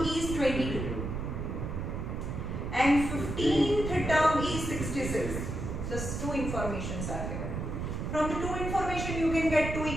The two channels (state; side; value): noise; right; rumble, 4 dB below the sound